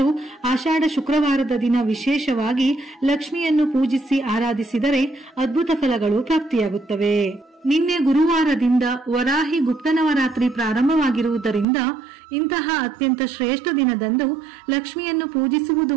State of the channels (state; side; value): drops out; left; at 11.7 s